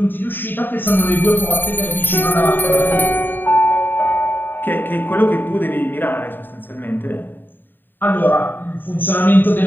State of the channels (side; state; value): right; late; 0.094 ms